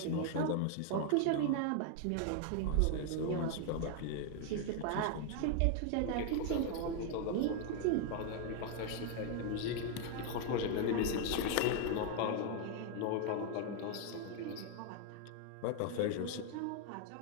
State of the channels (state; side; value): different; both; correlation 0.00